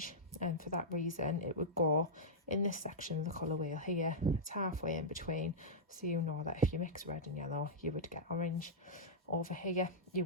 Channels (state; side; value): normal; both; correlation -0.09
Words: and for that reason it would go in this section of the colour wheel here. It's halfway in between, so you know that if you mix red and yellow you would get orange. Over here you